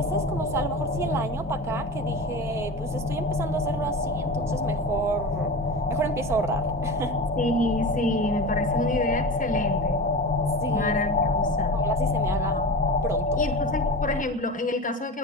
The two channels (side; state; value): both; normal; correlation 0.30